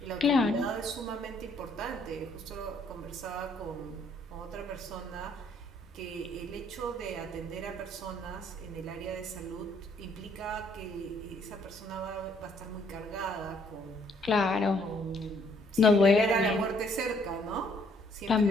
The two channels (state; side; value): normal; both; correlation 0.66